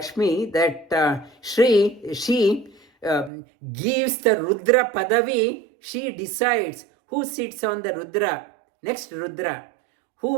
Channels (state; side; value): drops out; left; at 3.3 s